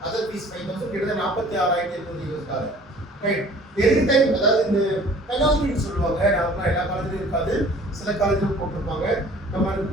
அதர் ஃபீஸ் 5,000, கிட்டத்தட்ட 46,800 US dollar. Right. Every time, அதாவது இந்த பெனால்ட்டின்னு சொல்லுவாங்க, நார்மலாக எல்லா காலேஜிலும் இருக்காது, சில காலேஜிலும் போட்டிருப்பாங்க. நம்ம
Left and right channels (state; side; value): normal; both; correlation 0.51